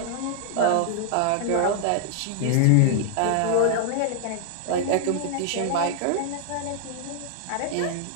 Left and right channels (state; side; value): different; both; correlation -0.01